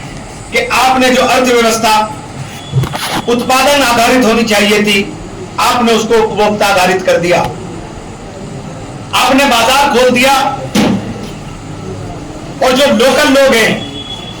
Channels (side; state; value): both; identical; correlation 1.00